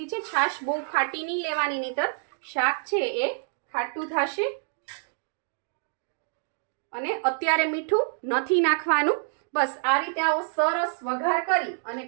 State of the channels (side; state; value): left; silent; digital silence